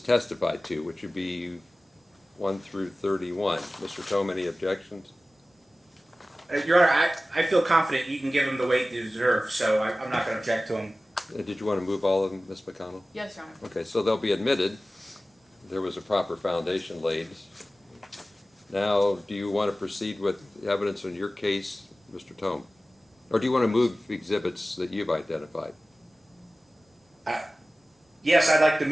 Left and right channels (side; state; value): both; normal; correlation 0.96